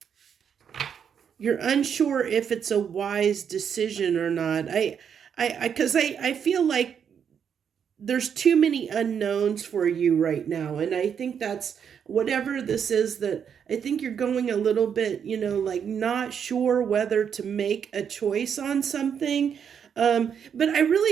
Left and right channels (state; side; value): quieter; left; 7.7 dB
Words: You're unsure if it's a wise decision or not. Because I feel like there's too many unknowns for you right now. And I think that's whatever this is, that I think you're going a little bit, like not sure whether to make a choice on something. But I